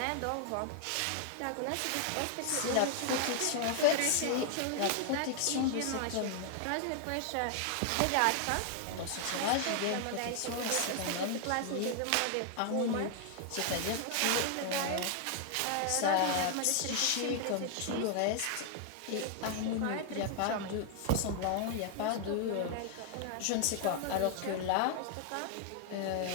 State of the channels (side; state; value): both; different; correlation 0.00